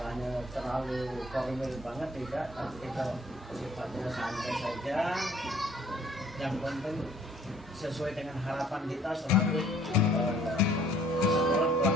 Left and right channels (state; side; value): normal; both; correlation 0.58